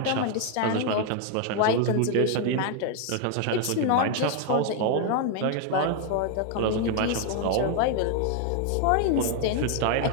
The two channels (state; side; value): different; both; correlation 0.01